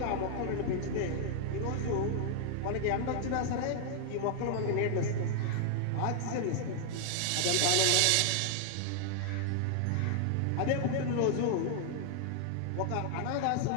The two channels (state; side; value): different; both; correlation -0.01